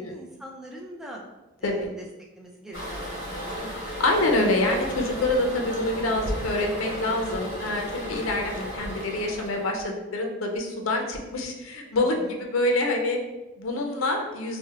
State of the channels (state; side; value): normal; both; correlation 0.08